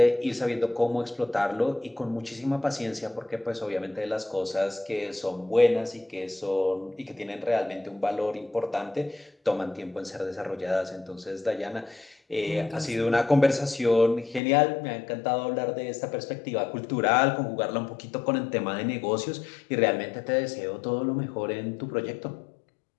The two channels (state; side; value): drops out; right; at 14.4 s